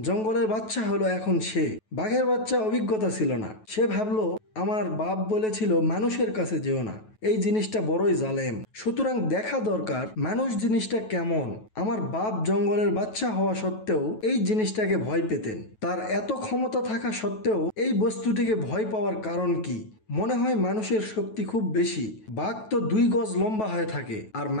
জঙ্গলের বাচ্চা হলো এখন সে। বাঘের বাচ্চা অভিজ্ঞতা ছিল না। সে ভাবলো, আমার বাপ বলেছিল মানুষের কাছে যেও না, এই জিনিসটা বড়ই জালেম, সুতরাং দেখা দরকার মানুষ জিনিসটা কেমন। আমার বাপ জঙ্গলের বাচ্চা হওয়া সত্ত্বেও এই জিনিসটাকে ভয় পেতেন। তার এত ক্ষমতা থাকা সত্ত্বেও এই বস্তুটিকে ভয় পাওয়ার কারণ কি? মনে হয় মানুষের শক্তি খুব বেশি। বাঘ তো 2 গজ লম্বা হয়ে থাকে, আর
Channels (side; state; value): right; late; 9.2 ms